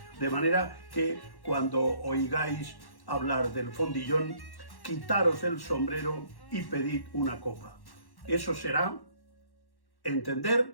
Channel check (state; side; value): late; right; 1.1 ms